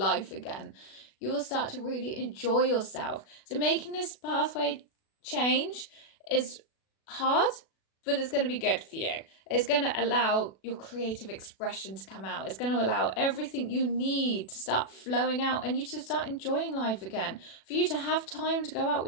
again. You will start to really enjoy yourself. So making this pathway change is hard, but it's going to be good for you. It's going to allow your creative expression to come out. It's going to allow everything you need to start flowing out and you to start enjoying life again, for you to have time to go out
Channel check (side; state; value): right; late; 36 ms